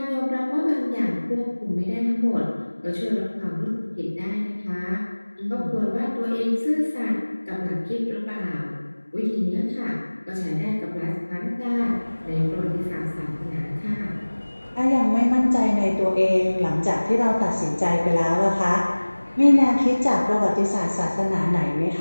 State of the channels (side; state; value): both; inverted; correlation -1.00